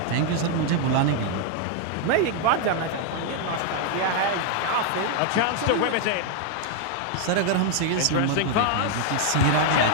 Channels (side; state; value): both; different; correlation 0.00